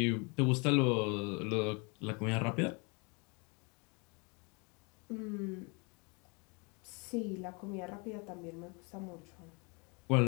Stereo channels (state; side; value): quieter; right; 31.6 dB